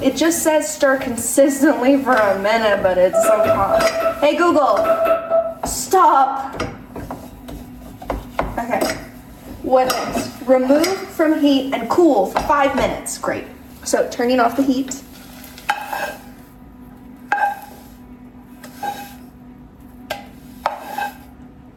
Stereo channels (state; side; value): identical; both; correlation 1.00